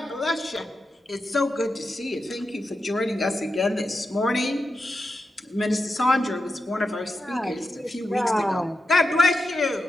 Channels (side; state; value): both; normal; correlation 0.88